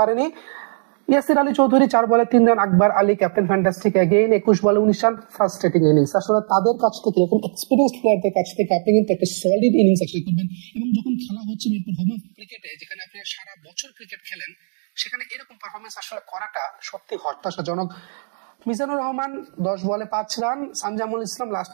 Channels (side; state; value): left; silent; 65 dB below the other